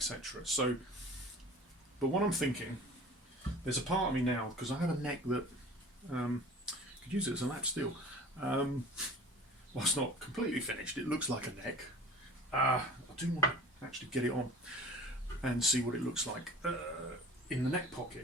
So, but what I'm thinking, there's a part of me now, because I have a neck that could use it as a lap steel. Well, it's not completely finished, it looks like a neck. I do want to actually get it on and see what it looks like in the neck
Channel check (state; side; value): normal; both; correlation 0.42